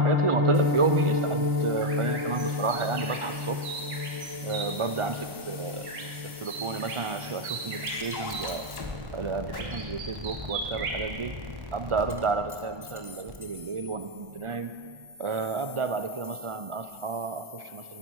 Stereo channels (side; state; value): left; late; 1.1 ms